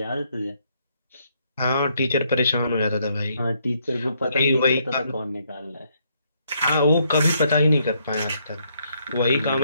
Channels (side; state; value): both; inverted; correlation -0.73